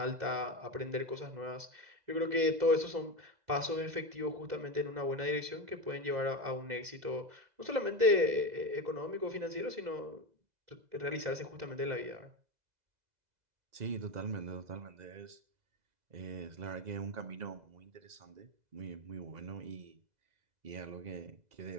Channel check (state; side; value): late; left; 2.0 ms